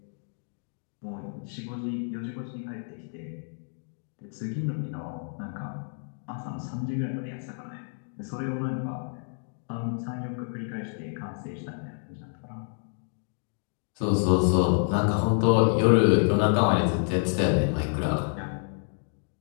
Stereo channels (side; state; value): right; silent; 59 dB below the other